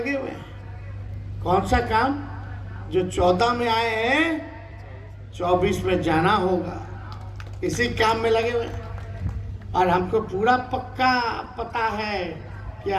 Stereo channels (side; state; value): both; identical; correlation 1.00